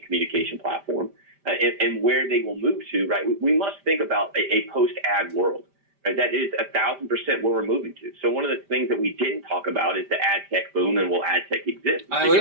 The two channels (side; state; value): left; late; 5.0 ms